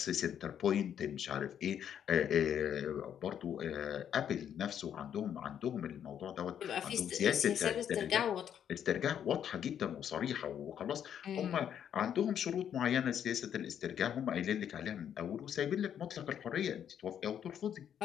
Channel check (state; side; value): quieter; right; 9.2 dB